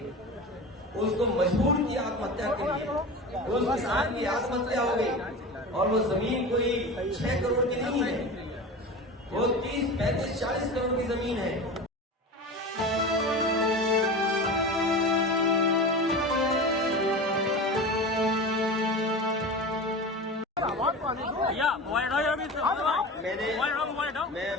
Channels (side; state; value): both; normal; correlation 0.30